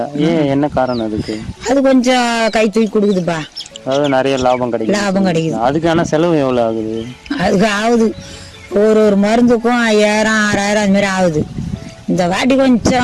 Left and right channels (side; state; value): both; identical; correlation 1.00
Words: ஏன், என்ன காரணம் அதுக்கு? அது கொஞ்சம் கை தூக்கி கொடுக்குதுப்பா. அதாவது நிறைய லாபம் கிடைக்குது. அதுக்கான செலவு எவ்வளவு ஆகுது? அதுக்கு ஆகுது ஒரு மருந்துக்கும் 5000-6000 அது மாதிரி ஆகுது. இந்த வாட்டி